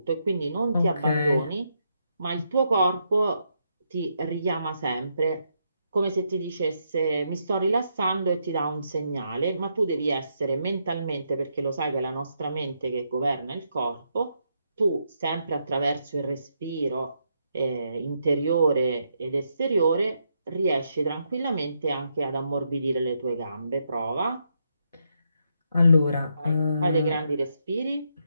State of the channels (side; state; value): both; inverted; correlation -0.79